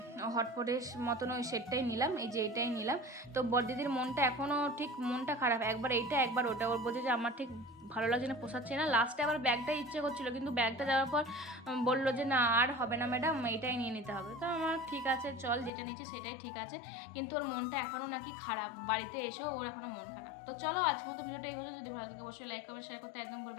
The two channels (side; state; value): right; drops out; at 15.7 s